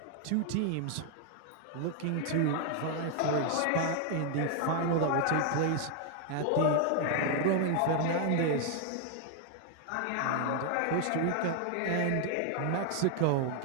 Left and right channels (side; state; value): both; different; correlation 0.00